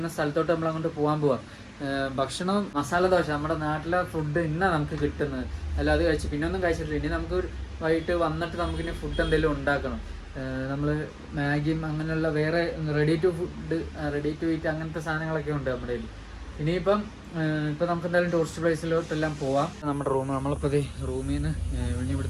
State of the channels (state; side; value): identical; both; correlation 1.00